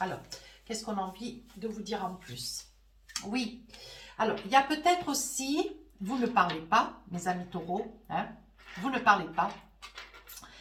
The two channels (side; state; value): both; identical; correlation 1.00